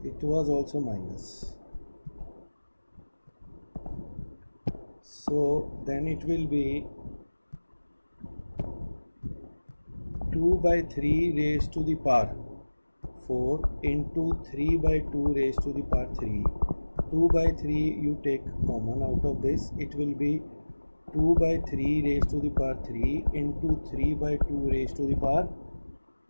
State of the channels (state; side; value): inverted; both; correlation -1.00